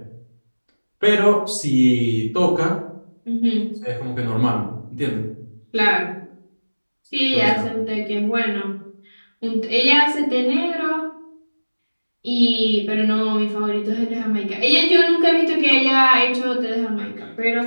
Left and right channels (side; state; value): both; inverted; correlation -1.00